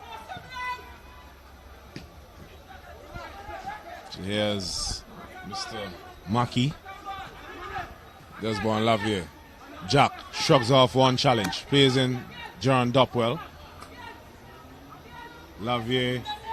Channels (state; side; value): identical; both; correlation 1.00